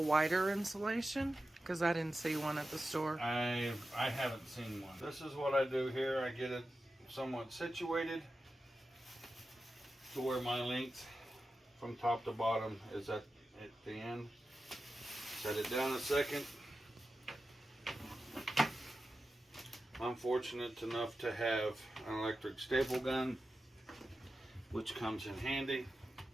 wider insulation? Because I didn't see one at the store. I haven't seen one. This is what I do here. I get it somewhat situated to where my length from top to bottom is at the end. Set it down a second. I'm fortunate enough to have an electric staple gun, which comes in handy.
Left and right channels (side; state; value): both; normal; correlation 0.92